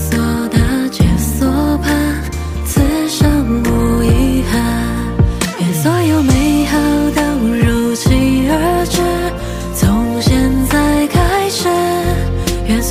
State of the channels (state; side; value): identical; both; correlation 1.00